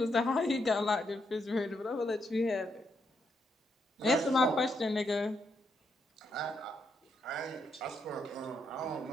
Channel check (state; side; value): normal; both; correlation 0.78